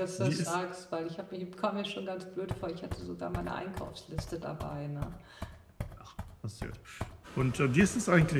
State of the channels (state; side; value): identical; both; correlation 1.00